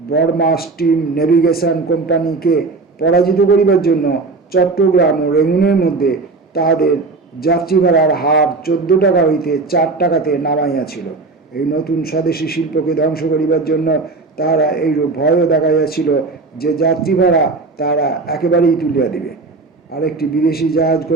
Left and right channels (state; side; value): quieter; left; 3.8 dB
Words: স্টিম নেভিগেশন কোম্পানিকে পরাজিত করিবার জন্য চট্টগ্রাম ও রেঙ্গুনের মধ্যে তাহাদের যাত্রী ভাড়ার হার 14 টাকা হইতে 4 টাকাতে নামাইয়াছিল। এই নতুন স্বদেশী শিল্পকে ধ্বংস করিবার জন্য তাহারা এইরূপ ভয়ও দেখাইয়াছিল যে যাত্রী ভাড়া তাহারা একেবারেই তুলিয়া দিবে। আরেকটি বিদেশি জাহাজ